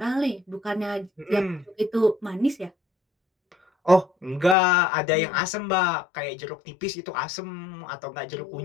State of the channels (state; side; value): drops out; right; at 4.5 s